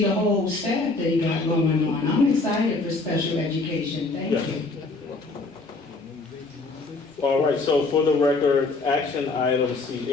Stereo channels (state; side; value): quieter; right; 3.5 dB